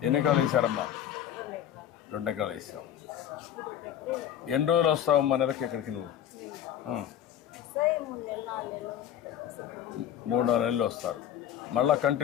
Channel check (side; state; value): right; quieter; 10.5 dB